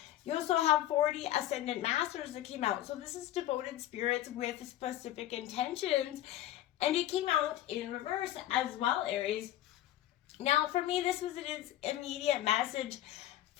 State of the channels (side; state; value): right; quieter; 13.4 dB